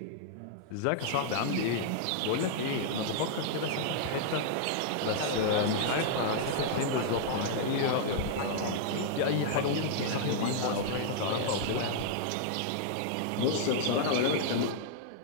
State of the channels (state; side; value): different; both; correlation -0.01